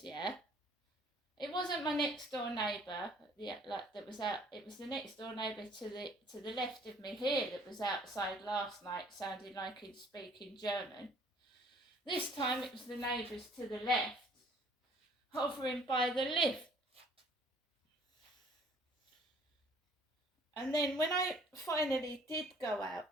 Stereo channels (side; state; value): both; normal; correlation 0.56